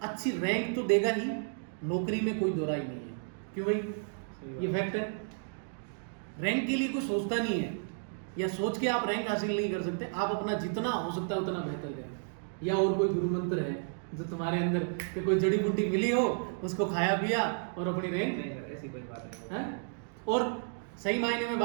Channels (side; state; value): left; silent; digital silence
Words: अच्छी रैंक तो देगा ही, नौकरी में कोई दो राय नहीं है। क्यों भाई, ये फैक्ट है। रैंक के लिए कोई सोचता नहीं है, या सोच के आप रैंक हासिल नहीं कर सकते। आप अपना जितना हो सकता है उतना बेहतर करें। या और कोई गुरु मंत्र है जो तुम्हारे अंदर कि कोई जड़ी बूटी मिली हो, उसको खाया पिया और अपनी रैंक, नहीं सर, ऐसी कोई बात नहीं है। और सही मायने में